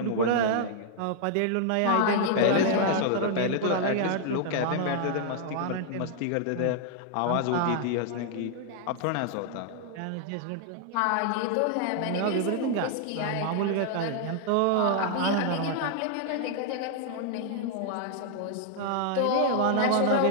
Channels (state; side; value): different; both; correlation -0.01